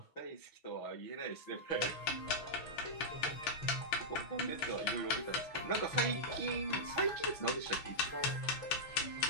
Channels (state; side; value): late; right; 7.2 ms